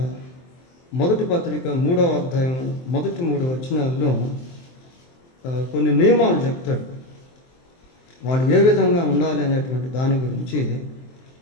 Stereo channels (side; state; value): right; late; 23 ms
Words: మొదటి పత్రిక 3వ అధ్యాయం మొదటి 3 వచనాల్లో కొన్ని నియమాలు చెప్తాడు. వాళ్ళు ఏ విధంగా ఉండాలి అనేటువంటి దాని గురించి